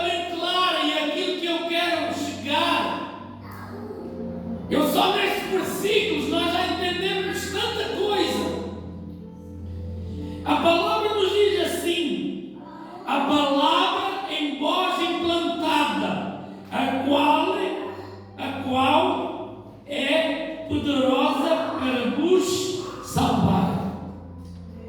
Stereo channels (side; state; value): both; identical; correlation 1.00